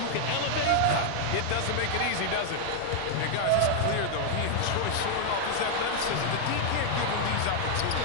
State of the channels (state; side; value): different; both; correlation 0.00